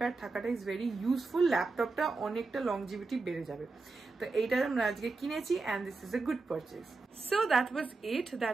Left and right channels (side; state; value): left; quieter; 3.8 dB